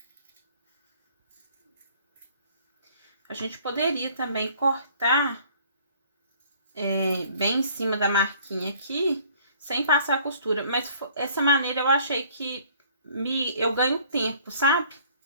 A gente poderia também cortar bem em cima da marquinha aqui, sem passar a costura, mas essa maneira eu achei que eu ganho tempo, sabe?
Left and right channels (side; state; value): both; inverted; correlation -0.57